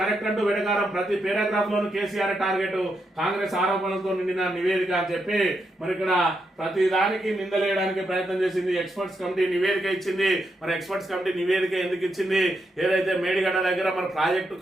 అంటూ వెడకారం. ప్రతి పారాగ్రాఫ్ లోను కేసీఆర్ టార్గెట్. కాంగ్రెస్ ఆరోపణలతో నిండిన నివేదిక అని చెప్పి మరి ఇక్కడ ప్రతి దానికి నిందలేయడానికి ప్రయత్నం చేసింది. ఎక్స్పర్ట్స్ కమిటీ నివేదిక ఇచ్చింది. మరి ఎక్స్పర్ట్స్ కమిటీ నివేదిక ఎందుకు ఇచ్చింది? ఏదైతే మేడిగడ్డ దగ్గర మన ప్రాజెక్టు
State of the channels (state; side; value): normal; both; correlation 0.82